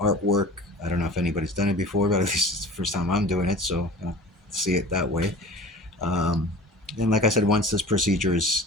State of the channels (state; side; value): normal; both; correlation 0.40